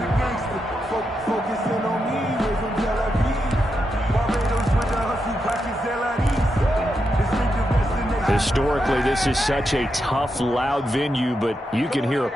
Historically, this is such a tough, loud venue, but you can hear a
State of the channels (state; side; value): normal; both; correlation 0.85